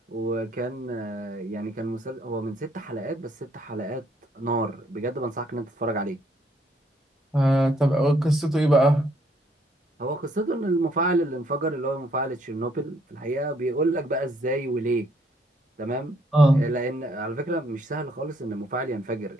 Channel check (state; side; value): normal; both; correlation 0.68